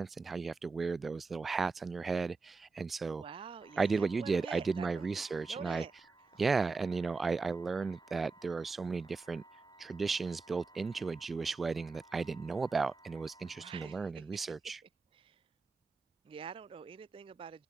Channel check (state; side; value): quieter; left; 4.3 dB